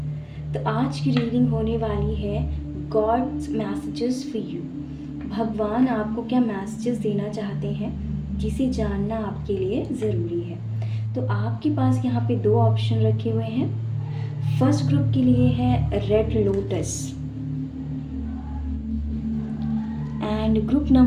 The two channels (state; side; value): identical; both; correlation 1.00